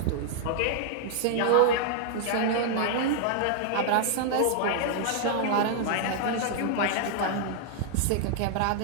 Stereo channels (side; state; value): both; different; correlation -0.01